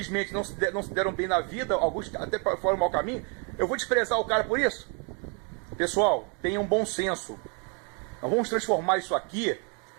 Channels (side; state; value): left; quieter; 36.0 dB